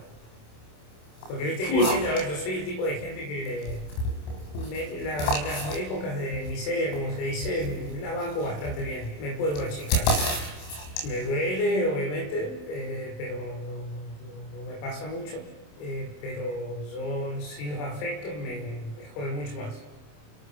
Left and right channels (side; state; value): right; late; 27 ms